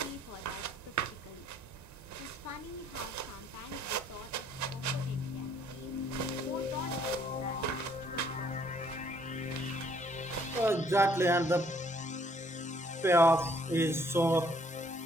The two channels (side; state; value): both; normal; correlation 0.64